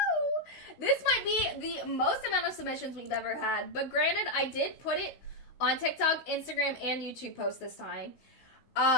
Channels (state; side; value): late; right; 16 ms